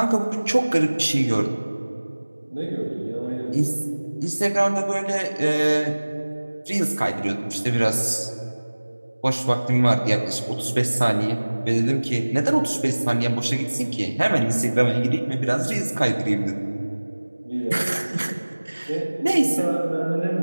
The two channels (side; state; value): both; inverted; correlation -1.00